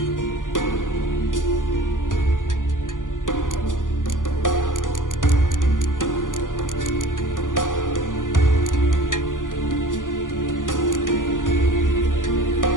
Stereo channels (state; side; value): late; right; 0.88 ms